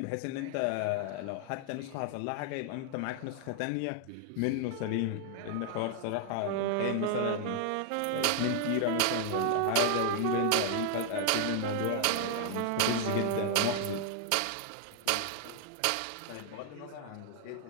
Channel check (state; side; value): different; both; correlation 0.00